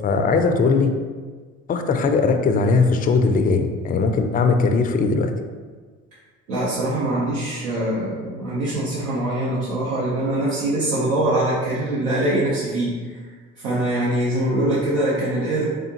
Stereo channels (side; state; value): both; normal; correlation 0.43